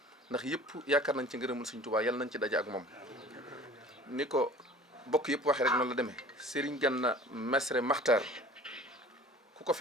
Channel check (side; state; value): both; normal; correlation 0.46